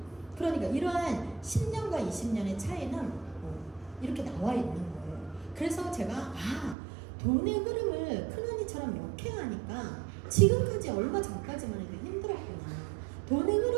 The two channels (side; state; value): left; drops out; at 6.8 s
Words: 그러니까 이러한 10년과 20년의 차이는 이렇게 나와 있는 거예요. 그래서 제가 돈의 흐름을 큰언니처럼 역행하니까 지금까지 얼마 전까지만 해도 힘들었구나. 돈의